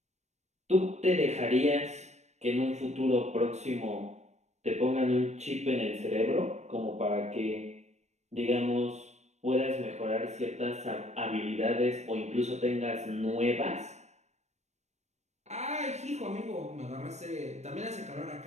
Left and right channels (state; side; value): late; left; 0.33 ms